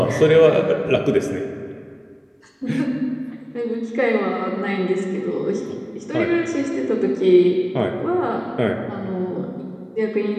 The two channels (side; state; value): both; identical; correlation 1.00